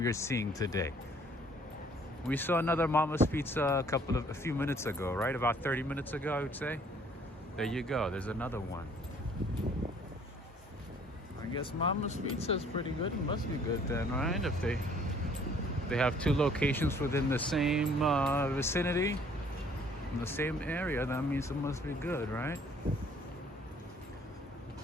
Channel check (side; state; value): both; normal; correlation 0.59